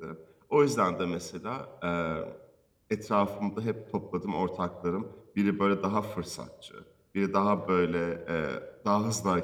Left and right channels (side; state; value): both; identical; correlation 1.00